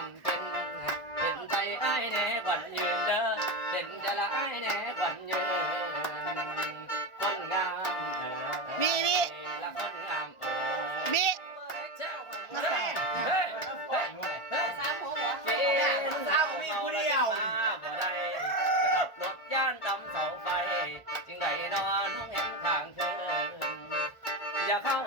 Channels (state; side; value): late; right; 1.4 ms